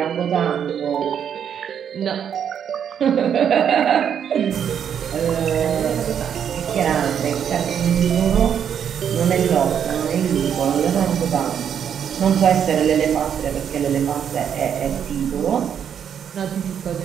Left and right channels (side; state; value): left; quieter; 8.4 dB